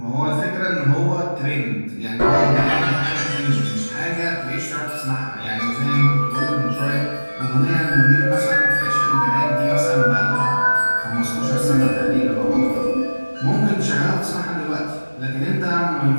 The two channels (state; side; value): inverted; both; correlation -1.00